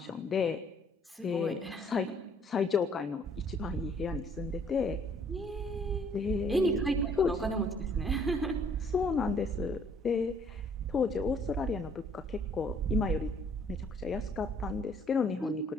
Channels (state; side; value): normal; both; correlation 0.62